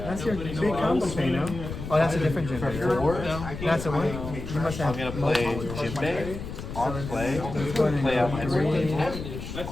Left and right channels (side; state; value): left; noise; rumble, 8 dB below the sound